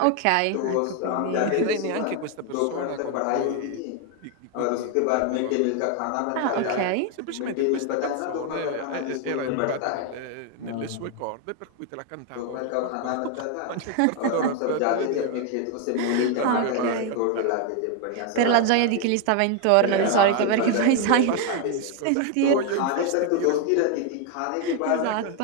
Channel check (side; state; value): both; different; correlation 0.01